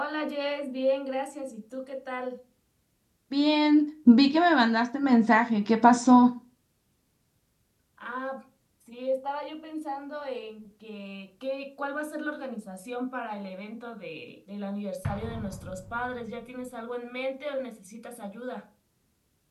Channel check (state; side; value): identical; both; correlation 1.00